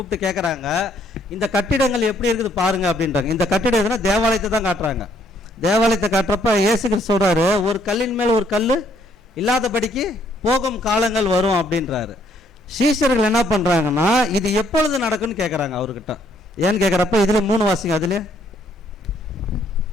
கேட்குறாங்க, இந்த கட்டிடங்கள் எப்படி இருக்குது பாருங்க அப்படின்றாங்க. இந்த கட்டிடம் எதுனா தேவாலயத்தை தான் காட்டுறாங்க. தேவாலயத்தை காட்டுறப்ப இயேசு கிறிஸ்து சொல்றாரு, ஒரு கல்லின் மேல் ஒரு கல் இல்லாதபடிக்கு போகும் காலங்கள் வரும் அப்படின்றாரு. சீஷர்கள் என்ன பண்றாங்கன்னா இது எப்பொழுது நடக்கும்னு கேட்குறாங்க அவர்கிட்ட. ஏன்னு கேட்குறப்ப இதுல 3 வாசிங்க. அதுல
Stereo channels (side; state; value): both; normal; correlation 0.67